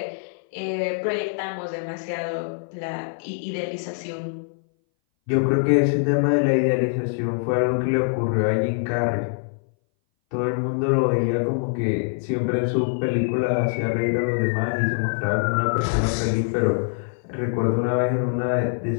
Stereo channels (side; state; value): right; silent; 60 dB below the other